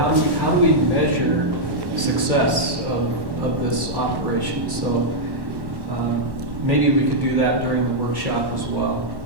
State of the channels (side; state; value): left; late; 1.1 ms